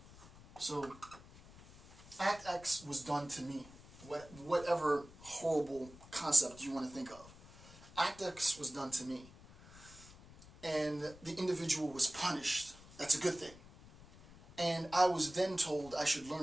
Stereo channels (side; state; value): left; noise; rumble, 20 dB below the sound